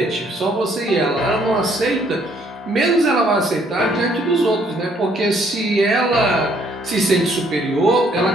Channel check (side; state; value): both; normal; correlation 0.65